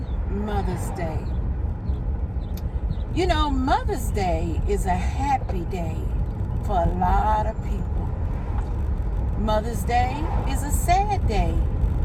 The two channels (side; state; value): both; identical; correlation 1.00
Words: Mother's Day. You know, Mother's Day is a happy day for a lot of people. Mother's Day is a sad day